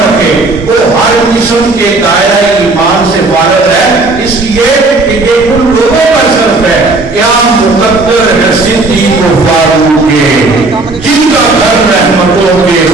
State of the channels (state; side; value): quieter; left; 3.3 dB